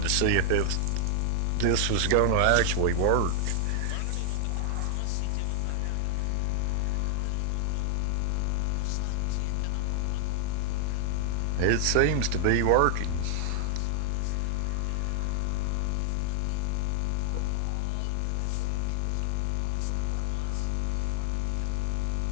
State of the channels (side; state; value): both; different; correlation 0.00